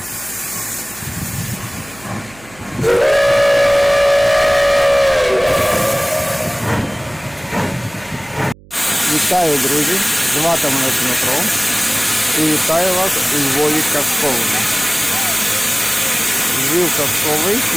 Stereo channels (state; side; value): noise; right; hum, 24 dB below the sound